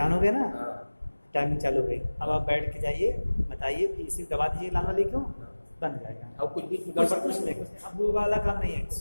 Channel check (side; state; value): both; inverted; correlation -1.00